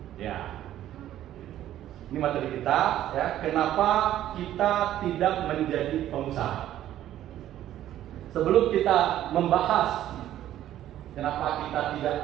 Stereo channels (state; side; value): quieter; left; 12.5 dB